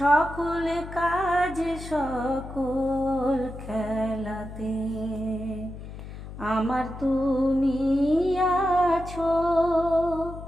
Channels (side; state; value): left; noise; hum, 12 dB below the sound